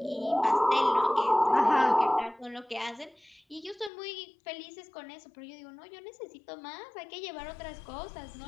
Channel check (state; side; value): drops out; right; at 3.9 s